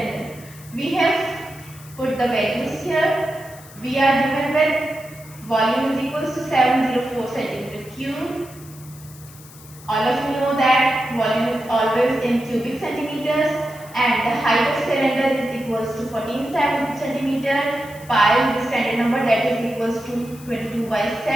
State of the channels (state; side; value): noise; left; hiss, 20 dB below the sound